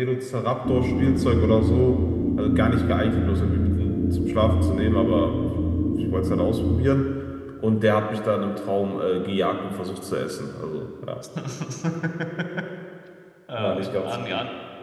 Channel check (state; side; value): identical; both; correlation 1.00